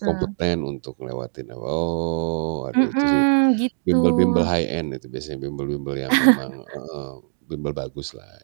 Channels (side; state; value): left; silent; digital silence